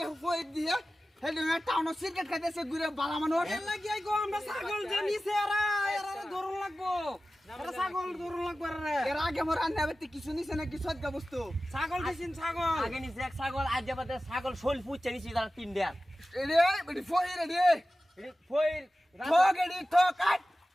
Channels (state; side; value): normal; both; correlation 0.95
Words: হয়ে দিয়ে হে দুঙ্গা টাউন সিগারেট খাইতেছে ঘুরে বালা মানুষ এর লাগি গো আমরা ছাগল যে নিছে এরা ধরন লাগবো ছাগল দৌড় লাগবে রে এর আগে মোর রান্না করতে কিছু নিছে না কিছু আজকে বস্তু ছাগল দিছেন ছাগল আগে নিচে এক ছাগল আজ যাবাতে ছাগল শোল পুচ্ছে নিছি তারা 3 দেয়া রে বডি ফই রে ফইর ঠক এডি ঠক আট